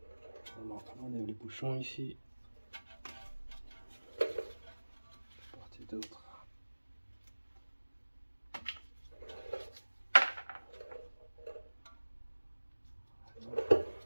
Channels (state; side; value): inverted; both; correlation -1.00